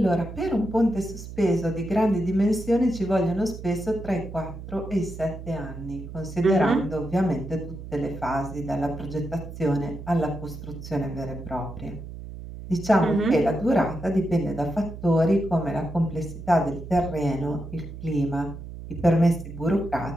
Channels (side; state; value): right; noise; hum, 11 dB below the sound